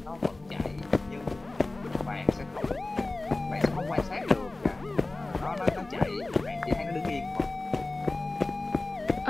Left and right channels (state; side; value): quieter; right; 3.0 dB